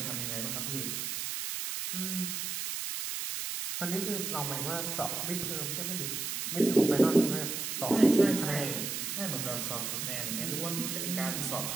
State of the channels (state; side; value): noise; right; hiss, 3 dB below the sound